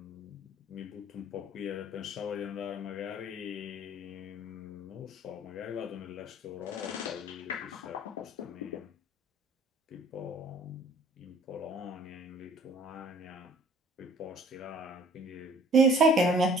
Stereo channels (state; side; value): normal; both; correlation 0.52